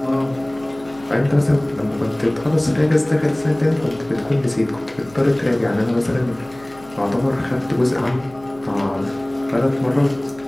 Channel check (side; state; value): left; noise; hum, 24 dB below the sound